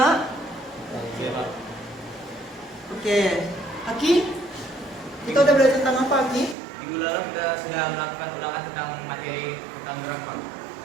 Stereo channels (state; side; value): drops out; left; at 6.6 s